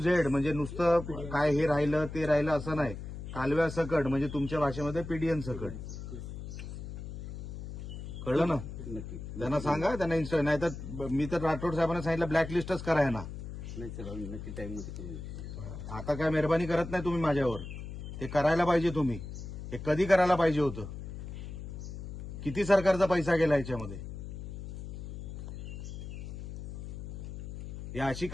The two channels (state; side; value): noise; left; hum, 9 dB below the sound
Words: Z म्हणजे नुसतं काय हे राहिलं ते राहिलं असं नाही, कालव्या सकट म्हणजे तुमच्या भाषेमध्ये पीडीएन सकट, कळलं ना? त्यांना सांगा, त्यांना इन्स्टा नाही तर मी तर राठोड साहेबांना सांगितलं ब्लॅकलिस्टच कराय ना। आता काय मेहरबानी करत नाही तुम्ही माझ्यावर, ते करायला पाहिजे तुम्ही। हे कधी करायला पाहिजे होतं? किती सरकारचा पैसा गेला याच्यामध्ये? या अशी